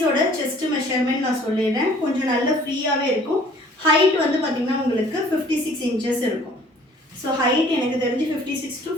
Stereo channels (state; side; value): normal; both; correlation 0.54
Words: செஸ்ட் மெஷர்மெண்ட் நான் சொல்லிடுறேன். கொஞ்சம் நல்ல ஃப்ரீயாகவே இருக்கும். ஹைட் வந்து பார்த்தீங்கன்னா உங்களுக்கு 56 inches இருக்கும். ஸோ ஹைட் எனக்கு தெரிஞ்சு 56 to